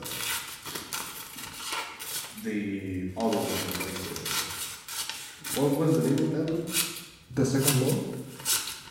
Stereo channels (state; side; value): identical; both; correlation 1.00